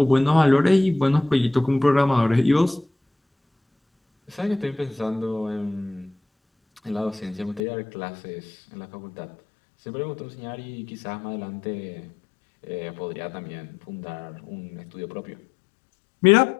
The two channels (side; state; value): right; drops out; at 7.6 s